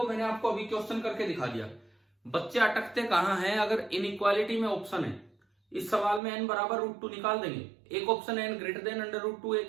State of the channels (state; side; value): drops out; left; at 6.2 s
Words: मैंने आपको अभी क्वेश्चन करके दिखा दिया, बच्चे अटकते कहां हैं। अगर इनइक्वालिटी में ऑप्शन है इस सवाल में n बराबर √2 निकाल देंगे, एक ऑप्शन n ग्रेटर देन √2,